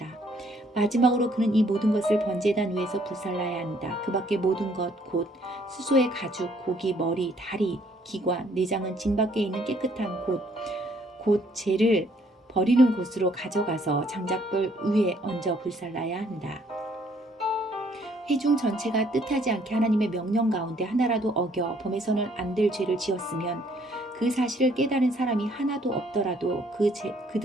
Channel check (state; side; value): normal; both; correlation 0.65